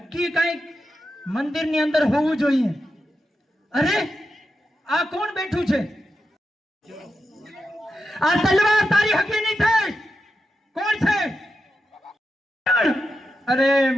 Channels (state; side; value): normal; both; correlation 0.88